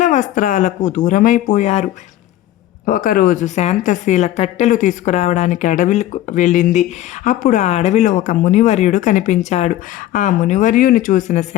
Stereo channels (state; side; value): quieter; right; 13.5 dB